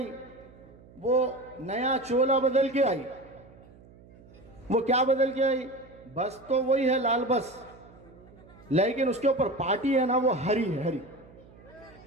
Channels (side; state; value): right; noise; hum, 23 dB below the sound